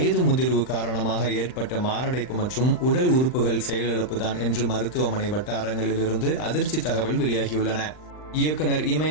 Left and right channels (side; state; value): right; late; 39 ms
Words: முதிர்வு காரணமாக ஏற்பட்ட மாரடைப்பு மற்றும் உடல் உறுப்புகள் செயலிழப்புதான் என்று மருத்துவமனை வட்டாரங்களிலிருந்து அதிர்ச்சி தகவல் வெளியாகியுள்ளன. இயக்குனர்